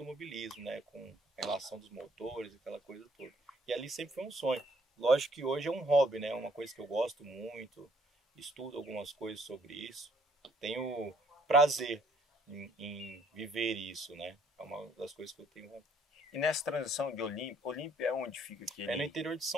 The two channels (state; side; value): normal; both; correlation 0.64